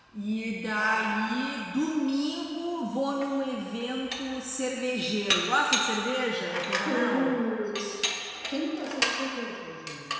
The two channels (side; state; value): both; identical; correlation 1.00